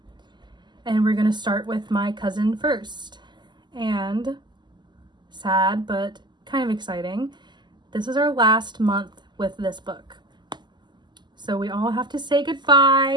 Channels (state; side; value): late; left; 0.21 ms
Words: and we're going to start with my cousin first. And sad but kind of exciting, this is our last month with this book, so we all have to say